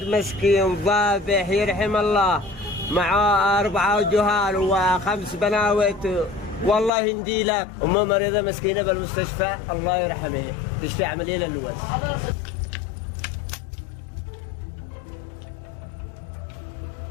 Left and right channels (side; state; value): right; drops out; at 6.9 s